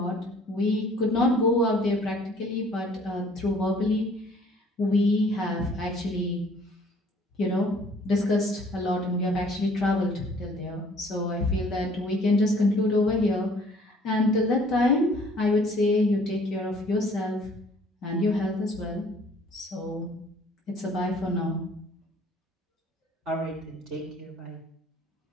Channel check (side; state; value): both; normal; correlation 0.56